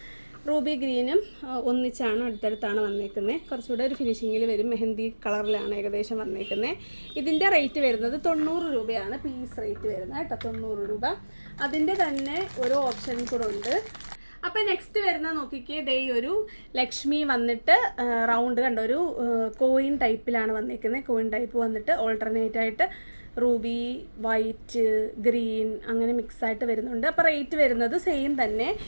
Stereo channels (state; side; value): inverted; both; correlation -1.00